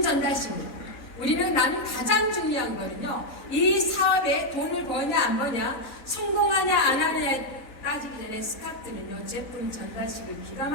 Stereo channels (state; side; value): late; right; 3.9 ms